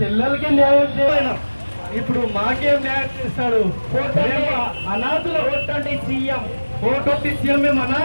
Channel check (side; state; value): both; inverted; correlation -1.00